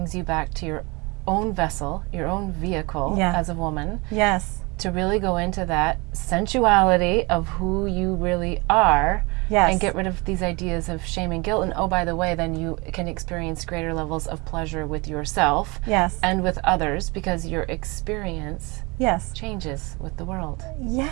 you back to your own vessel, your own vehicle as a woman. Yes. To really go into that sensuality of who you really are. Yes. And get rid of these ideas of shame and guilt. And oh, by the way, then you can experience greater levels of pleasure with yourself and with others, because your experience changes with the world.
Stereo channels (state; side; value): quieter; left; 26.6 dB